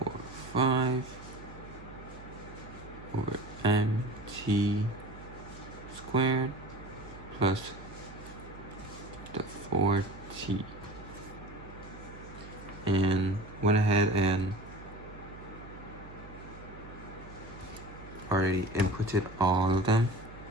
over mt squared plus the 4t. And went ahead and already inputted all of them,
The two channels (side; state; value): right; noise; hum, 16 dB below the sound